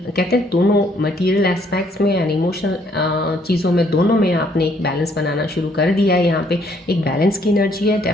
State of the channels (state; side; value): normal; both; correlation 0.67